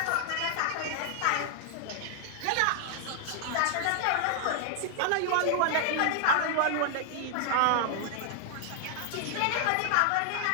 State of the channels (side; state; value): both; different; correlation 0.00